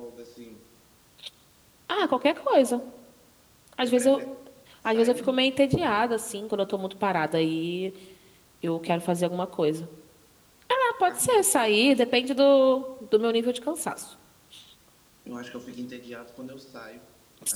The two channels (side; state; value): both; identical; correlation 1.00